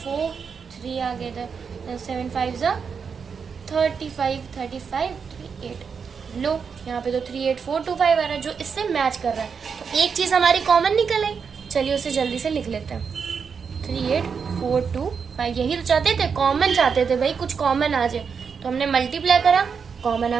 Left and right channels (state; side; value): quieter; left; 6.1 dB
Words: 3 आ गया था, 7 5 35, 35 38, लो यहाँ पे तो 38425 आ रहा है, जो इससे मैच कर रहा है। तो एक चीज हमारी कॉमन निकल आई, चलिए उसे जल्दी से लिख लेते हैं 38425। यही तो चाहते थे, कॉमन चाहते थे भाई, कुछ कॉमन आ जाए। तो हमने मल्टीप्लाई करा, कॉमन